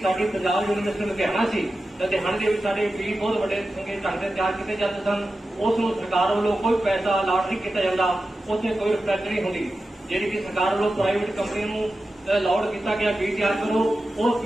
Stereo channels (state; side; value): normal; both; correlation 0.92